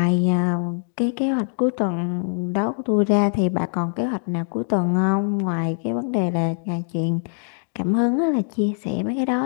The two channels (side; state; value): right; silent; digital silence